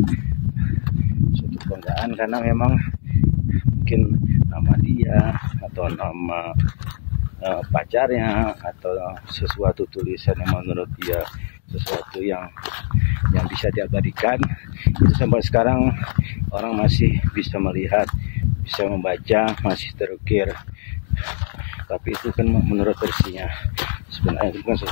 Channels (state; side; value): silent; right; digital silence